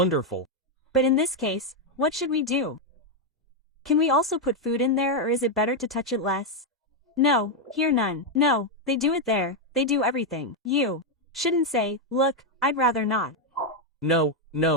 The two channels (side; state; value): both; normal; correlation 0.02